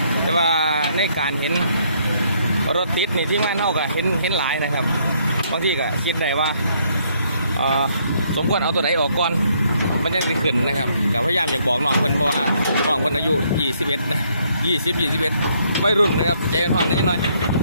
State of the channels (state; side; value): inverted; both; correlation -0.69